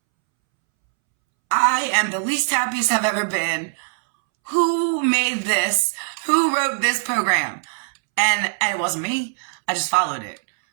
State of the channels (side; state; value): left; silent; 65 dB below the other